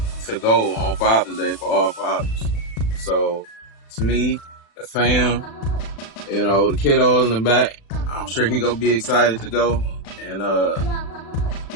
to go on Father's Day for all fathers. So it's me, the fam, you know, the kiddos in the back. I'm sure he gonna be excited to go. And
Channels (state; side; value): late; right; 36 ms